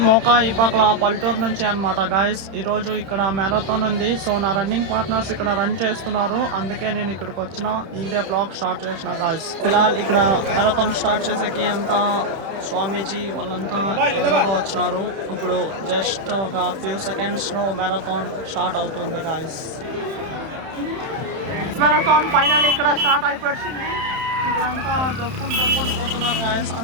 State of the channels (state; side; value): late; left; 31 ms